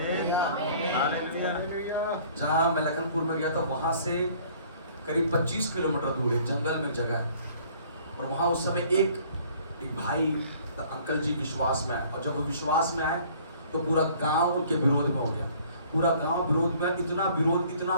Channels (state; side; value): inverted; both; correlation -0.55